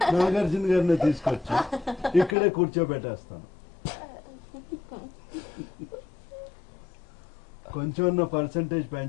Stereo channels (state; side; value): drops out; right; at 2.4 s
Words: నాగార్జున గారిని తీసుకొచ్చి ఇక్కడే కూర్చోబెట్టేస్తాను. కొంచెం పర్సంటేజ్